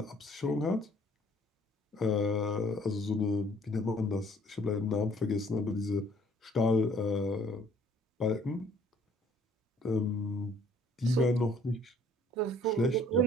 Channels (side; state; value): both; normal; correlation 0.58